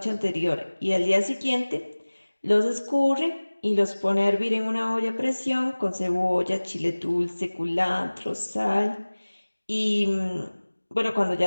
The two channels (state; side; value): inverted; both; correlation -1.00